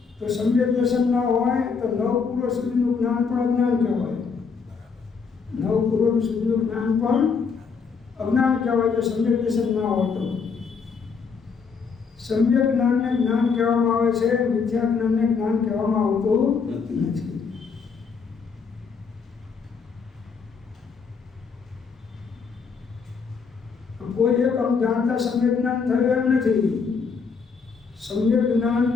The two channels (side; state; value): right; quieter; 5.5 dB